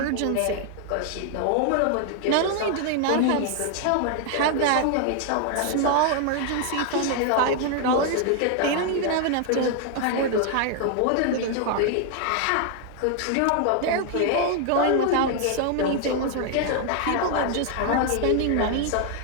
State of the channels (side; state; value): both; different; correlation 0.00